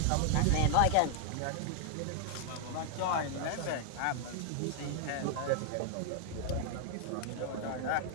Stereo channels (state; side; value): different; both; correlation 0.00